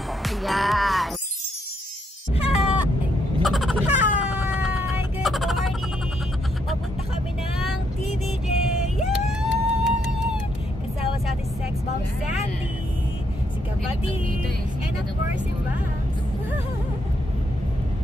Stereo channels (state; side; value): normal; both; correlation 0.76